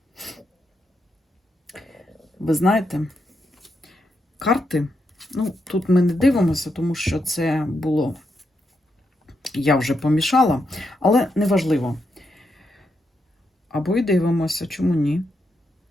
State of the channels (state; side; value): normal; both; correlation 0.82